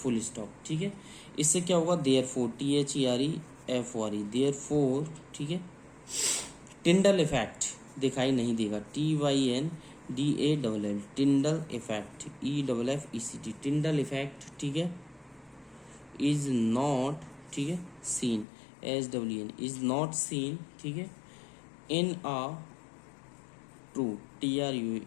stop, ठीक है। इससे क्या होगा, therefore, T H E R E F O R E, therefore, ठीक है। Tyndall effect दिखाई नहीं देगा, T Y N D A double L, Tyndall effect, E double F E C T, Tyndall effect, ठीक है, is not, ठीक है, seen, S W N, is not seen, ठीक है, in a true, T R U,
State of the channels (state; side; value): drops out; right; at 18.4 s